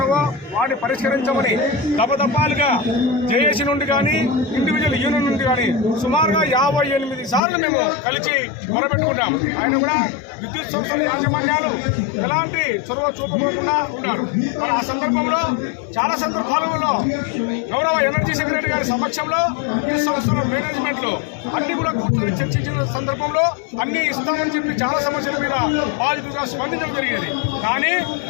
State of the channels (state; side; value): drops out; right; at 7.4 s